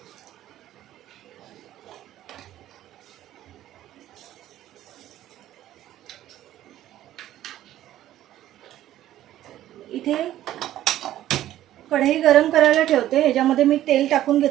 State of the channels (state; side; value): quieter; left; 13.2 dB